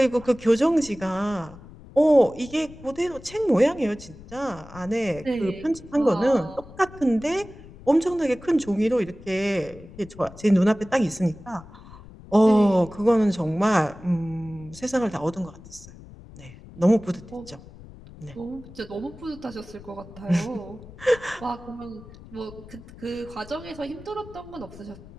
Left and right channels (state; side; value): noise; left; rumble, 18 dB below the sound